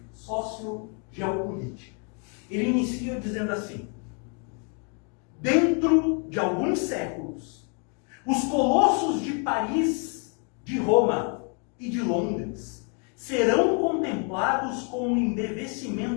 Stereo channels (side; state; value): right; quieter; 39.1 dB